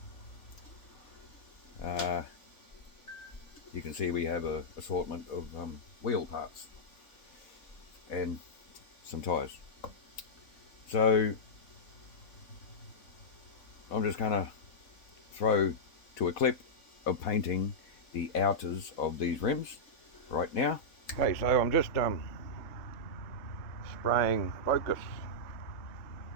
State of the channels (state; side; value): late; right; 3.7 ms